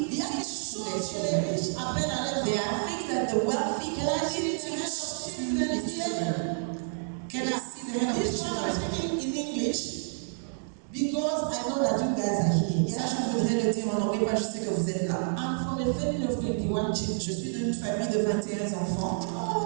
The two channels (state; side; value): silent; left; 58 dB below the other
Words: Il y a des teach to their choses que les children. riches apprennent à leurs There enfants. are things that the wealthy Can I can see teach the hand of to children his here? children. Can I see the hand of the This one I'm children? speaking in English because I know that you guys are here. Ça, Yeah? je voudrais le dire en anglais, parce que je sais que vous êtes là. I'm from a family of 21 children. Je suis d'une famille de 21 enfants.